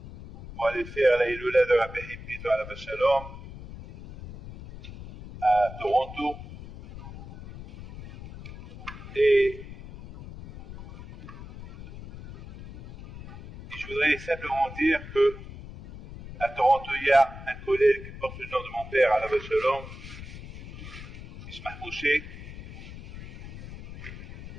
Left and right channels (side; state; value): left; noise; rumble, 13 dB below the sound